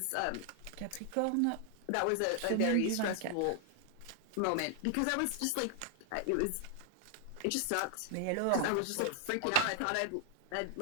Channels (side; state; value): both; different; correlation 0.00